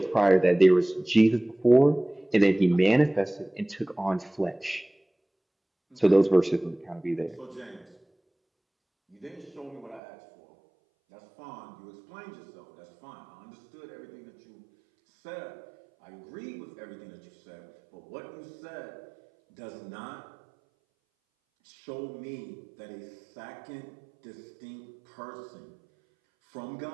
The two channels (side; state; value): left; drops out; at 10.0 s